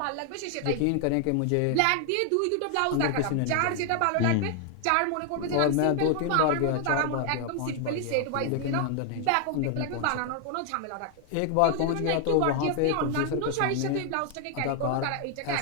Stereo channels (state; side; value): different; both; correlation 0.00